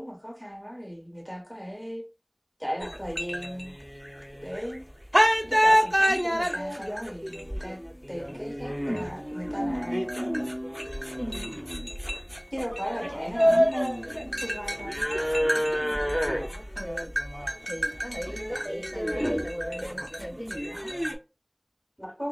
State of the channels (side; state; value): both; identical; correlation 1.00